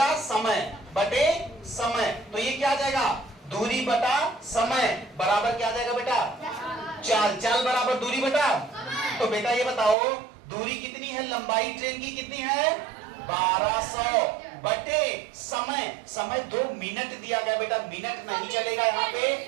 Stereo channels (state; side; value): drops out; left; at 10.0 s